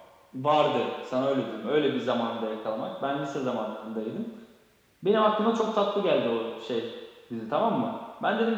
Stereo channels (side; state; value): both; identical; correlation 1.00